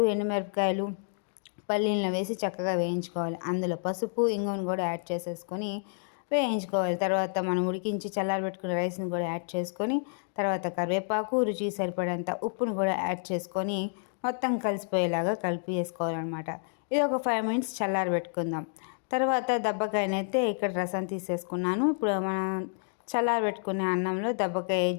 ఎండుమిరపకాయలు, పల్లీలను వేసి చక్కగా వేయించుకోవాలి. అందులో పసుపు, ఇంగువను కూడా యాడ్ చేసేసుకొని వేయించుకోవాలి. తర్వాత మనం ఉడికించి చల్లారబెట్టుకున్న రైస్ని కూడా యాడ్ చేసుకొని తర్వాత కరివేపాకు, రుచికి సరిపడేంత ఉప్పును కూడా యాడ్ చేసుకొని మొత్తం కలిసిపోయేలాగా కలిపి వేసుకోవాలన్నమాట. ఇది ఒక 5 మినిట్స్ చల్లారబెట్టుకుందాం. తర్వాత దబ్బకాయనైతే ఇక్కడ రసం తీసేసుకున్నాను. ఇప్పుడు మనం చల్లారబెట్టుకునే అన్నంలో దబ్బకాయ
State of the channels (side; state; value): right; silent; digital silence